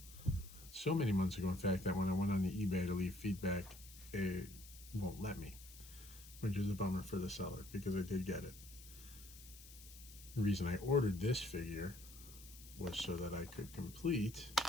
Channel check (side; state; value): left; noise; hiss, 17 dB below the sound